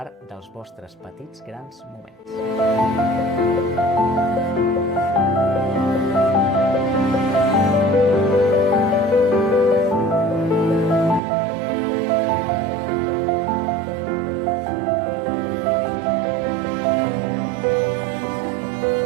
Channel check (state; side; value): drops out; left; at 11.2 s